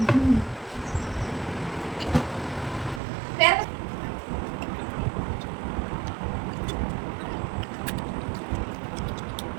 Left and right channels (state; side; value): drops out; left; at 3.0 s